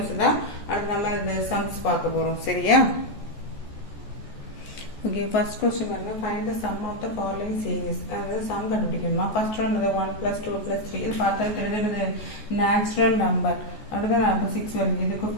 தான் அடுத்து நம்ம இந்த சம்ஸ் பார்க்க போறோம். சரியா. ஓகே. ஃபர்ஸ்ட் क्वेश्चन பாருங்க. Find the sum of the following series. அதாவது சம் கண்டுபிடிக்கணுமா. ஃபர்ஸ்ட் ஒன் வந்து 1 plus 2 plus 3. இது பார்த்தா தெரியுது நேச்சுரல் நம்பர். அடுத்து அப்போ 6 வருது. இதுக்கு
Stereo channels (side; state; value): right; late; 14 ms